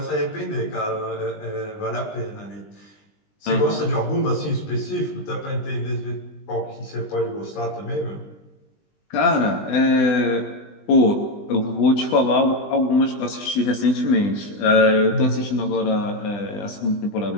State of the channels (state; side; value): late; right; 20 ms